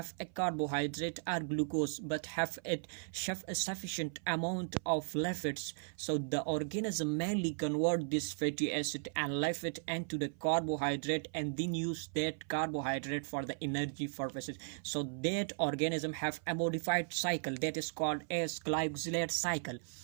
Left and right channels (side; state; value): left; silent; 53 dB below the other